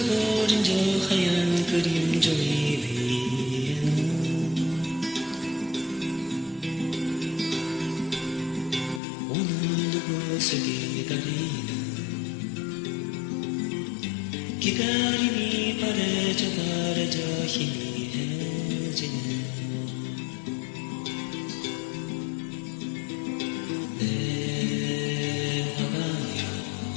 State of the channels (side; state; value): right; drops out; at 9.0 s